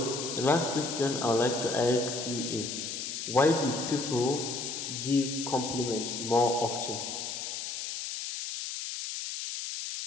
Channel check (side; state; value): left; noise; hiss, 5 dB below the sound